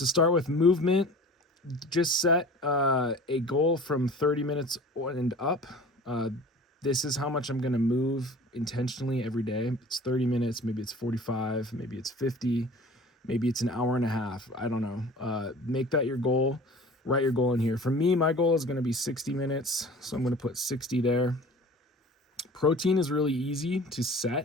start with movement, just set a goal from 30 minutes and up. This is how much I'm going to move intentionally every day. It's 30 minutes, maybe it's 45, maybe it's 50, maybe it's an hour and a half. I don't know. Make that your goal. Write your goal in here. For me, my goal is going to be 60 minutes, so I'm going to put 60 there. Protein is really easy to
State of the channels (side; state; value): both; normal; correlation 0.43